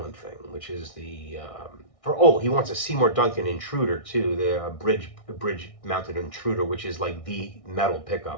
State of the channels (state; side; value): late; right; 1.6 ms